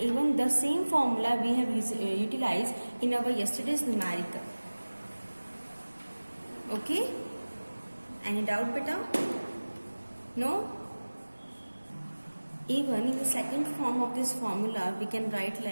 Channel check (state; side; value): inverted; both; correlation -1.00